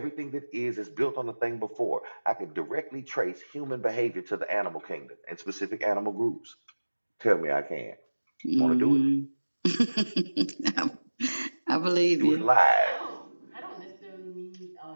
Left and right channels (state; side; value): inverted; both; correlation -1.00